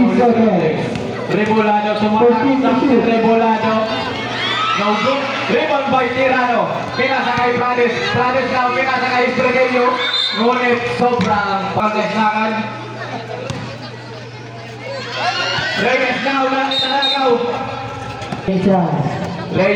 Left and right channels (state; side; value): identical; both; correlation 1.00